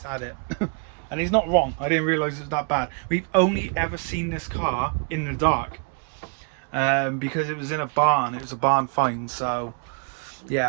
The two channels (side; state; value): left; quieter; 39.3 dB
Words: at it. And he's not wrong, I didn't realize it's that bad. We've only ever seen this car in the dark, because it was in a barn. It was a barn find, so